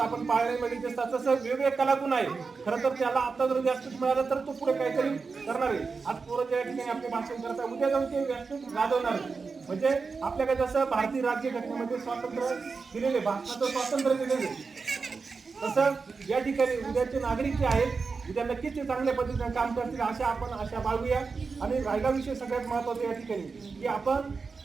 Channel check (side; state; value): left; quieter; 4.7 dB